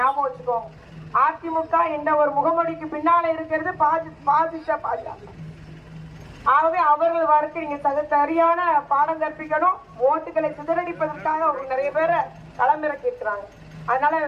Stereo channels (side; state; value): both; identical; correlation 1.00